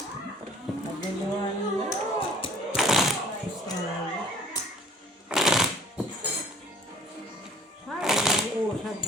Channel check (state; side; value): normal; both; correlation 0.53